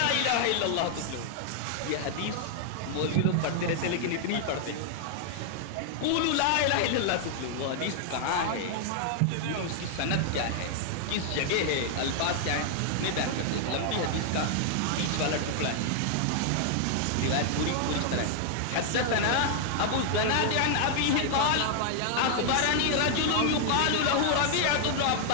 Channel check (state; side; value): different; both; correlation 0.00